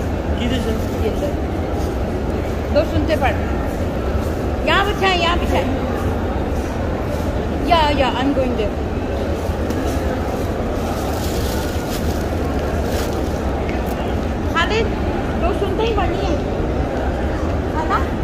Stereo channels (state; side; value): identical; both; correlation 1.00